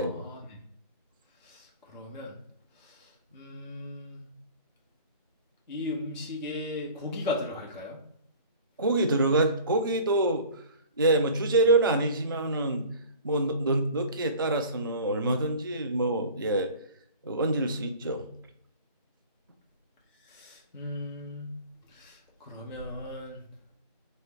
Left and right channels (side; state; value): both; inverted; correlation -0.43